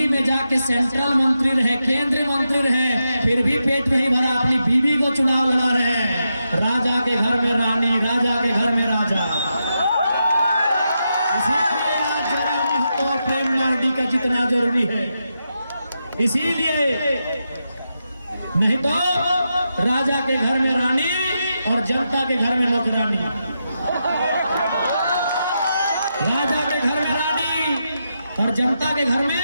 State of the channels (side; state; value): both; inverted; correlation -0.86